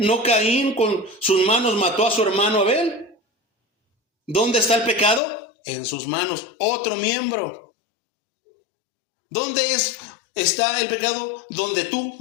¿No Caín con sus manos mató a su hermano Abel? ¿Dónde está el pecado? En sus manos, otro miembro. ¿Dónde está el pecado? Donde tú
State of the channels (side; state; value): right; drops out; at 5.2 s